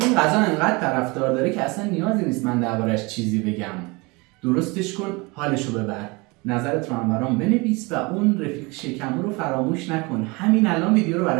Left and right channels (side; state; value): left; quieter; 26.1 dB